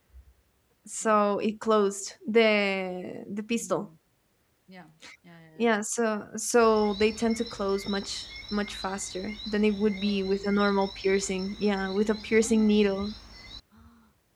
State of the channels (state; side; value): identical; both; correlation 1.00